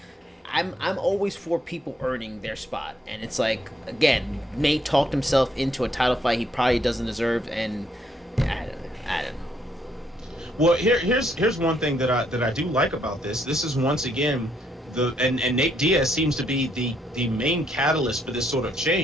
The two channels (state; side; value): normal; both; correlation 0.72